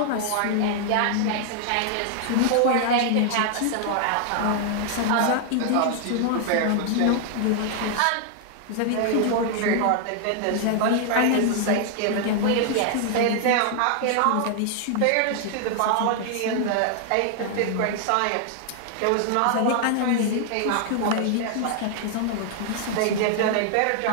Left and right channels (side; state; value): both; different; correlation 0.00